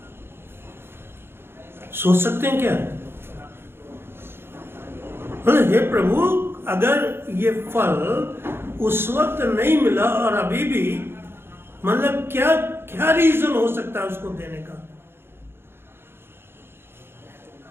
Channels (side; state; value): left; late; 0.11 ms